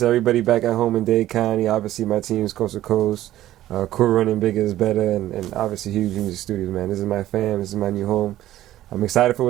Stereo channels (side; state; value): left; quieter; 13.9 dB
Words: everybody back at home in Dade County. Obviously, my team's coast to coast. Cool Running Bigger is Better, and obviously Huge Music Studios, man. This is my fam. This is my new home. I'm excited for